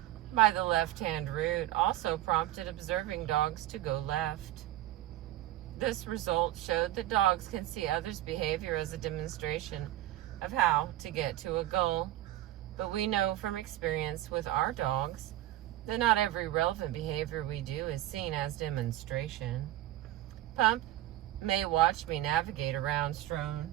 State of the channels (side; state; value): left; quieter; 14.8 dB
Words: by the left-hand route also prompted observing dogs to go left. This result showed that dogs can see others' behavior as a demonstration of how to get to a goal. But we know from experience with our dogs that not every relevant behavior we do is seen as demonstration. Pump may watch me navigate around strewn